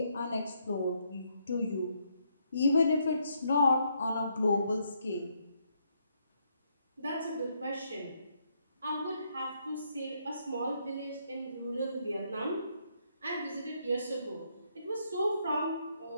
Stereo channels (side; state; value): both; inverted; correlation -0.74